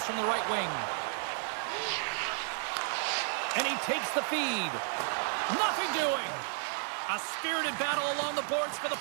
from the right wing. And he takes the feed. Nothing doing. A spirited battle along the boards for the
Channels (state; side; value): silent; left; 56 dB below the other